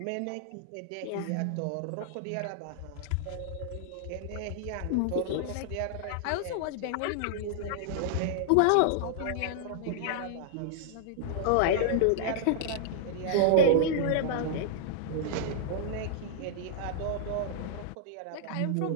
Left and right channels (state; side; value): different; both; correlation -0.01